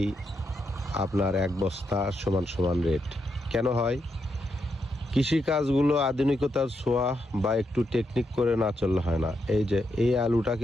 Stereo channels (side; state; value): both; normal; correlation 0.82